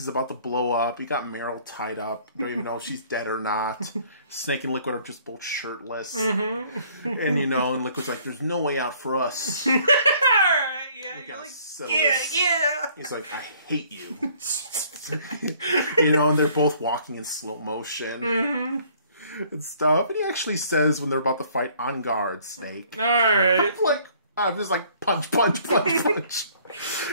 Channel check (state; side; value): inverted; both; correlation -0.59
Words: about to blow up. You got Meryl tied up. You don't even know if she's dead or not. Snake and Liquid are just both shirtless. And, you know, and Liquid's like, there's no way out for us. Alright, yeah. You're like, yeah. He's like, I hate you. You know, and they're both walking in slow motion. And stuff. And he actually says when they're about to fight, on guard, Snake. Alright. I'm just like, punch.